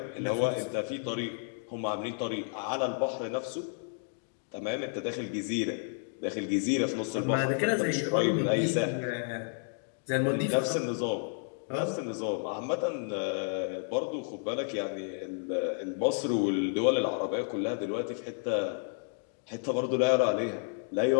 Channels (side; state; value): right; silent; 57 dB below the other